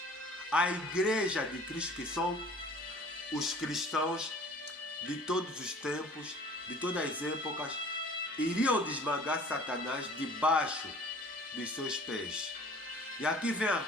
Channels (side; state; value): both; normal; correlation 0.48